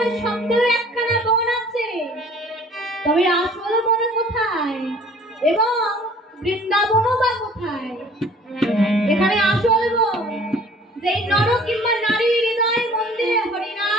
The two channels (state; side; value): normal; both; correlation 0.51